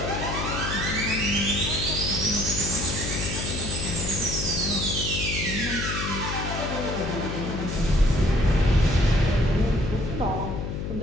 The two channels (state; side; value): noise; left; hum, 4 dB below the sound